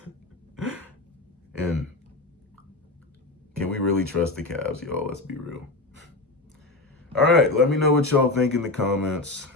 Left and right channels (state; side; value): quieter; right; 3.1 dB